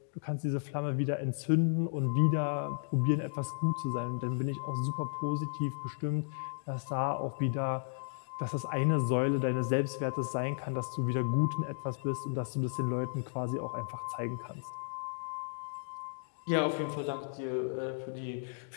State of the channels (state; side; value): silent; right; digital silence